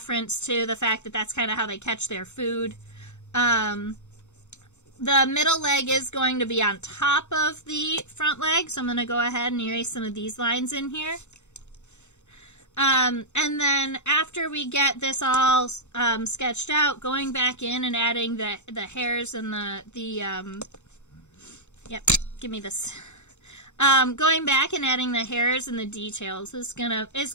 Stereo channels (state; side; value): late; right; 0.83 ms